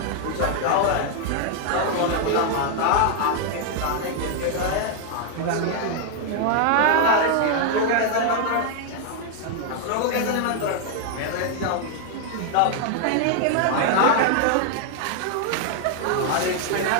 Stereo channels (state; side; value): different; both; correlation 0.00